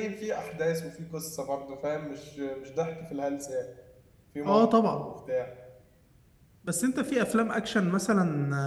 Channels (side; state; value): both; identical; correlation 1.00